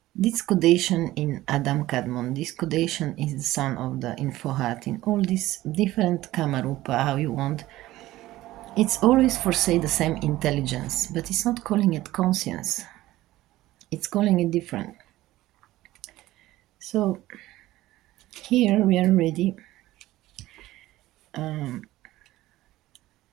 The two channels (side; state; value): left; quieter; 16.4 dB